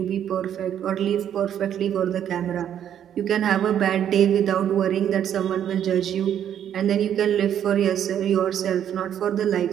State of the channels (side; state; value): left; quieter; 9.8 dB